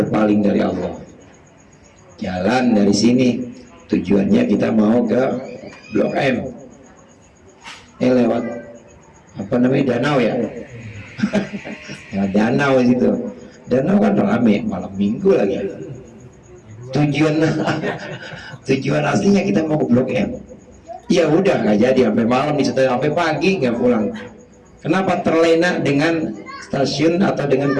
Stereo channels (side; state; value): both; identical; correlation 1.00